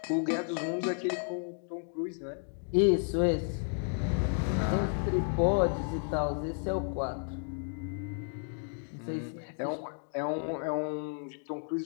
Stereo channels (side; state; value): right; silent; 55 dB below the other